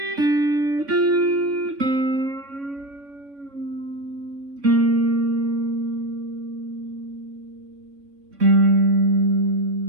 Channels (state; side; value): late; left; 3.6 ms